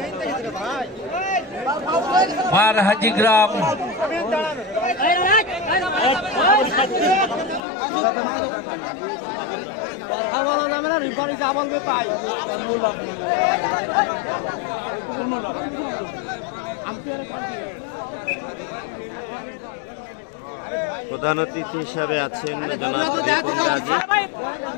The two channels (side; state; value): right; drops out; at 7.6 s